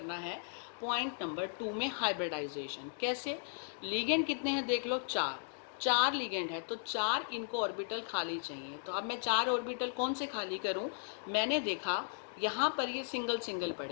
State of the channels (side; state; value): right; silent; digital silence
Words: है? पॉइंट नंबर 2 में हाइब्रिडाइजेशन। कैसे? लिगेंड कितने हैं देख लो, 4 लिगेंड है तो 4 इनको ऑर्बिटल खाली चाहिए। तो अब मैं 4 ऑर्बिटल कौन से खाली करूं? मैंने देखा यहाँ पर ये सिंगल सिंगल